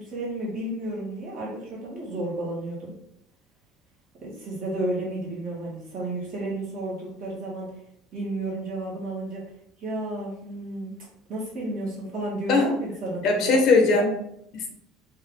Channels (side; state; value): both; normal; correlation 0.50